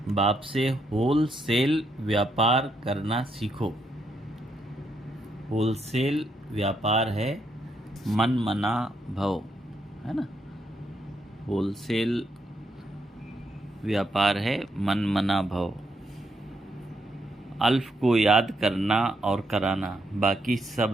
बाप से होलसेल व्यापार करना सीखो। होलसेल व्यापार है मन मना भव, है ना। होलसेल व्यापार है मन मना भव। अल्फ को याद करना और कराना, बाकी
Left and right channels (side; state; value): both; normal; correlation 0.78